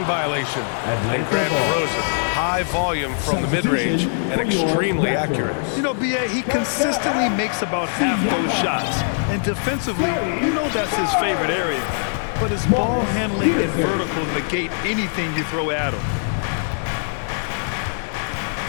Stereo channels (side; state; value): right; silent; 61 dB below the other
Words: violation. And grant DeRozan high volume from the mid-range and extremely accurate. You know, B.A., he consistently makes about half those shots. And defensively, you know that's his favorite area. But his ball handling and vertical negate anything you throw at him.